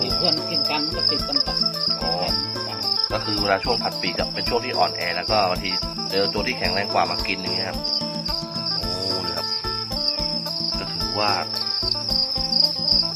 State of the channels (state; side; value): identical; both; correlation 1.00